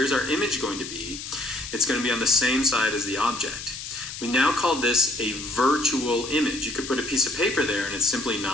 our image going to be? It's going to be on the same side as the object. We now call this a virtual image. You could put a piece of paper there and it's simply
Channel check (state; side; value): noise; left; hiss, 9 dB below the sound